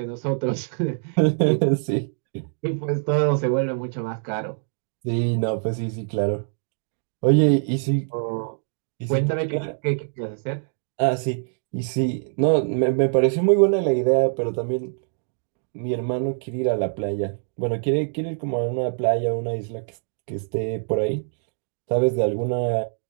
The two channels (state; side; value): silent; left; digital silence